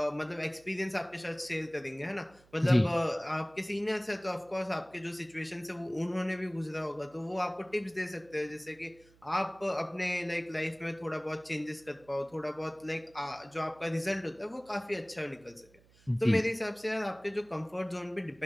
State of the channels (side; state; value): right; noise; hum, 28 dB below the sound